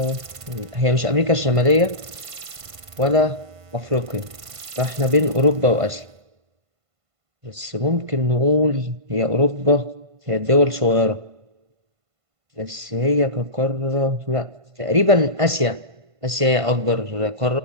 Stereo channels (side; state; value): left; late; 1.5 ms